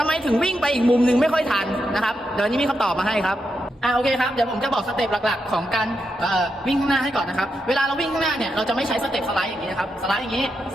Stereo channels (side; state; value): both; normal; correlation 0.85